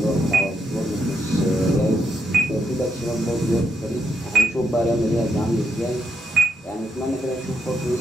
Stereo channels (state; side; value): normal; both; correlation 0.80